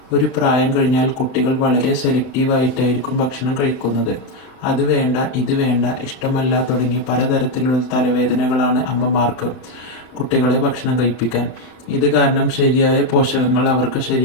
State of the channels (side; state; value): right; late; 31 ms